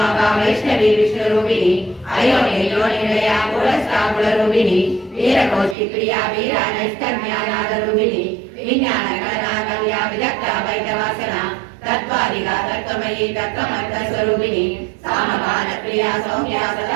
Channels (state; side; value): drops out; left; at 5.8 s